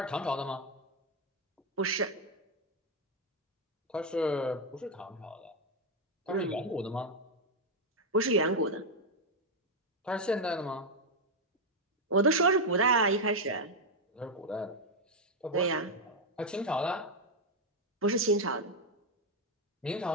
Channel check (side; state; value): both; normal; correlation 0.03